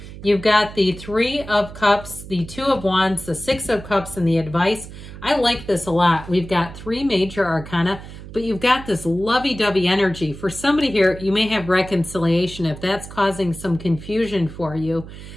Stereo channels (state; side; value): noise; right; hum, 14 dB below the sound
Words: You've got the 3 of Cups, the 2 of Wands, the 6 of Cups, and the advice. I like this a lot. We've got 3 major arcana, but you've got this lovey-dovey energy. For somebody here, you may have reconciliation if that's causing some confusion for you.